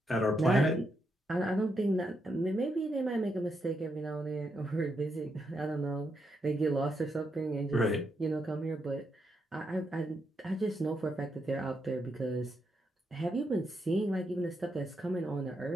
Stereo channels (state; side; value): normal; both; correlation 0.81